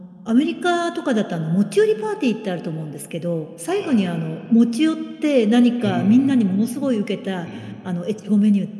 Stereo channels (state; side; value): identical; both; correlation 1.00